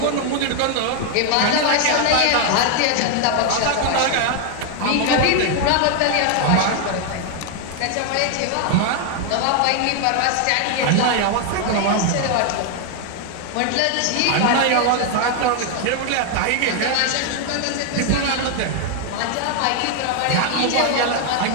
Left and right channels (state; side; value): different; both; correlation 0.00